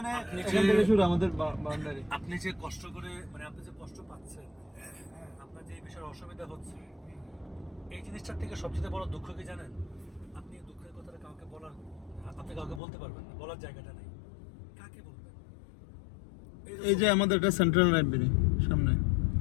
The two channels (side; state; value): right; drops out; at 12.8 s